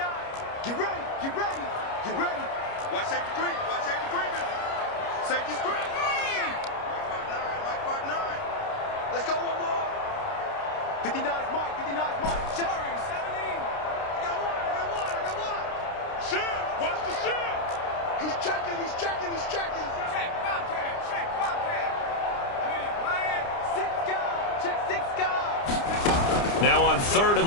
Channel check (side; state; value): right; late; 29 ms